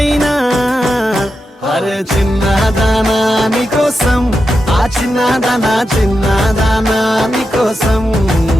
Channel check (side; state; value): both; normal; correlation 0.88